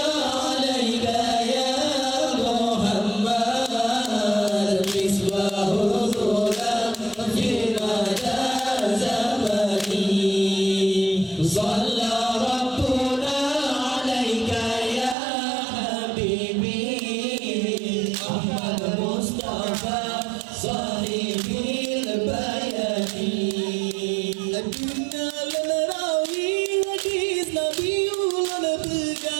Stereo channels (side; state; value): left; drops out; at 15.2 s